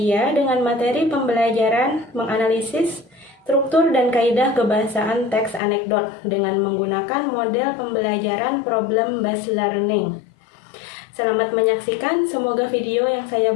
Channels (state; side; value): drops out; right; at 5.6 s